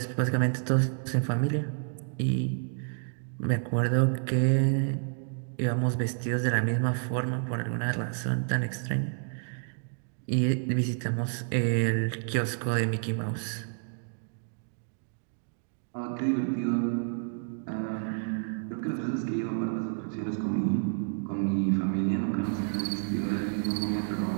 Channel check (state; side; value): silent; left; 58 dB below the other